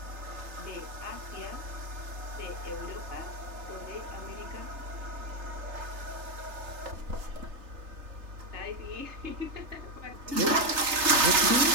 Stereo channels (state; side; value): late; left; 3.3 ms